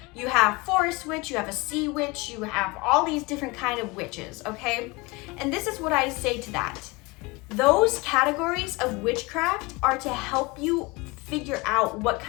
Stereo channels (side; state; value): right; quieter; 25.0 dB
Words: You have forest witch, you have a sea witch, you have all these different kind of witches, okay? And this is what I say to that. Those categories of witchcraft are to help you figure out what